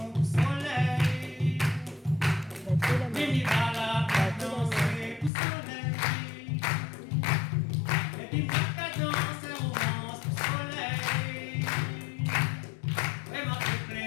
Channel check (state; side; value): drops out; right; at 5.3 s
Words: soleil. Mimi va la danser pour soleil. Et puis